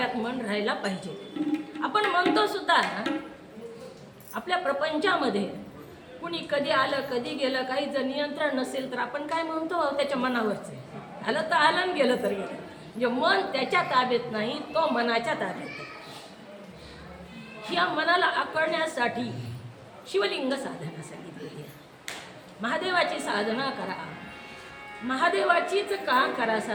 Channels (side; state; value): both; identical; correlation 1.00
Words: मन राहायला पाहिजे. आपण म्हणतो सुद्धा आपल्या प्रपंचामध्ये कुणी कधी आलं कधी गेलं, काही जर नियंत्रण नसेल तर आपण काय म्हणतो, त्याच्या मनावरच आहे. आलं तर आलं आणि गेलं तर गेलं. म्हणजे मन त्याच्या ताब्यात नाही, तो मनाच्या ताब्यात आहे. या मनाला आकळण्यासाठी शिवलिंग साधना सांगितलेली आहे. महादेवाची साधना करा. महादेवाचीच का करा